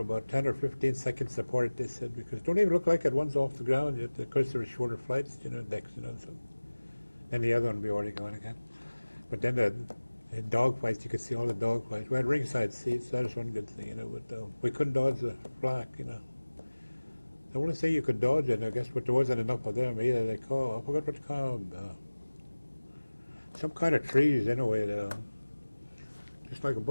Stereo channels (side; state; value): both; inverted; correlation -1.00